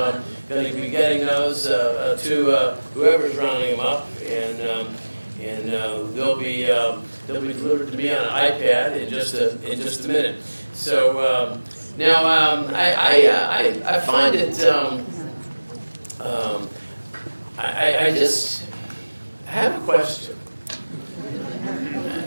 to be getting those to whoever's rounding them up, and they'll be delivered to me on an iPad in just a minute. So now I find it. I just have a question,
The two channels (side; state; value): both; inverted; correlation -1.00